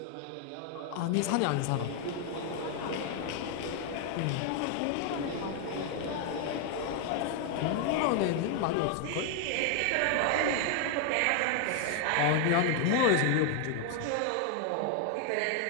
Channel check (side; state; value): both; different; correlation 0.00